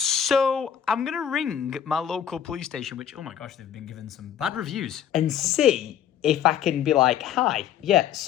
I'm going to ring my local police station, which, oh my gosh, they've been given some bad reviews, and see if I can be like, hi, yeah,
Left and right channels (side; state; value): right; quieter; 9.3 dB